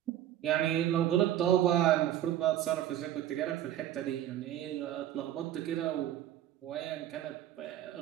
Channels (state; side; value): quieter; left; 12.1 dB